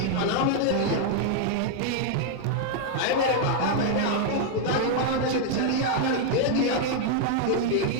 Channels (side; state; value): both; different; correlation 0.00